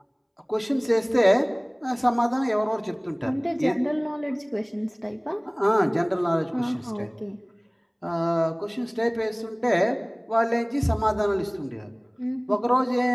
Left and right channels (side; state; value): both; identical; correlation 1.00